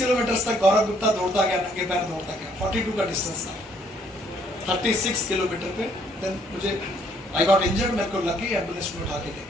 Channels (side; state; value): both; normal; correlation 0.66